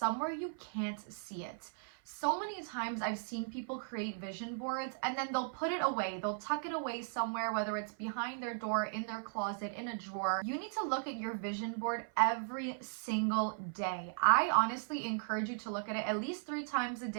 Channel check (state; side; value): silent; left; 53 dB below the other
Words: you can't see it. So many times I've seen people create vision boards and then they'll put it away. They'll tuck it away somewhere, whether it's behind their door, in their closet, in a drawer. You need to look at your vision board every single day. I honestly encourage you to look at it at least 3 times a